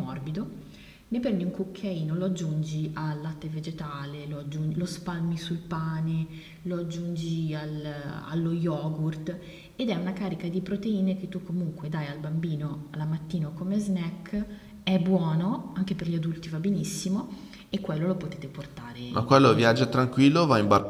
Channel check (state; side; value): identical; both; correlation 1.00